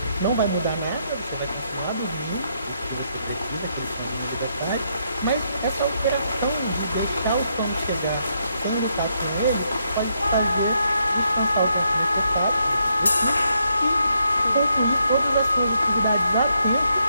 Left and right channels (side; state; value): both; inverted; correlation -0.77